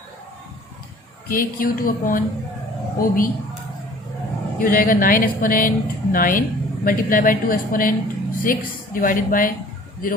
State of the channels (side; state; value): both; normal; correlation 0.51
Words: KQ2 अपॉन OB ये हो जाएगा 9 exponent 9 multiply bye 2 exponent 6 divided by